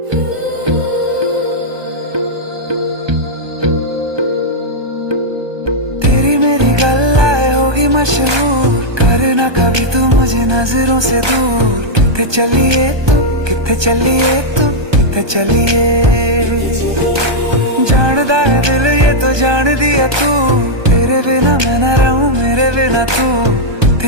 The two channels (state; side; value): late; left; 1.2 ms